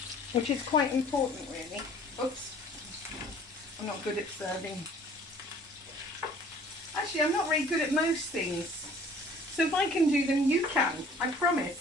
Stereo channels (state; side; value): normal; both; correlation 0.52